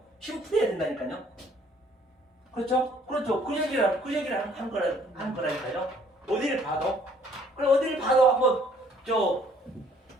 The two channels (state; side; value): normal; both; correlation 0.61